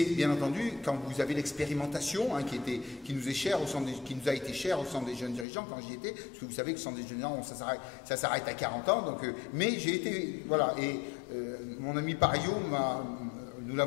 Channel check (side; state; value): right; drops out; at 5.5 s